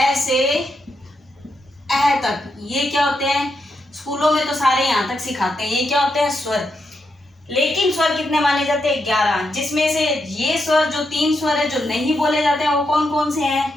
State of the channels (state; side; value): normal; both; correlation 0.83